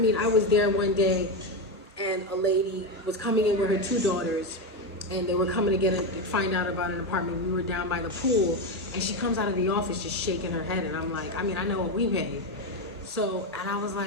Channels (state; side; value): normal; both; correlation 0.11